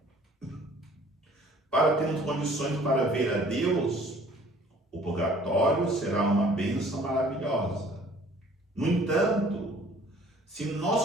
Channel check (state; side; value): normal; both; correlation 0.54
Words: para termos condições para ver a Deus, o purgatório será uma bênção maravilhosa. No entanto, se